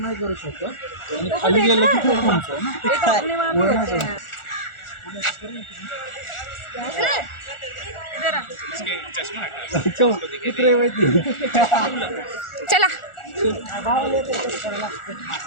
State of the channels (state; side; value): late; right; 1.4 ms